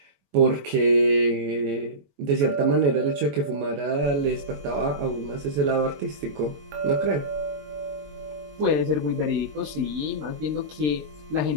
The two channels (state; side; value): late; left; 21 ms